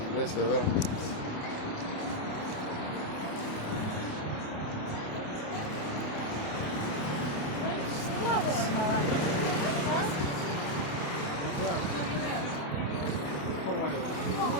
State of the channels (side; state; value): right; late; 28 ms